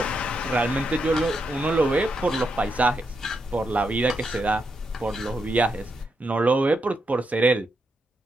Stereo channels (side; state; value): both; normal; correlation 0.82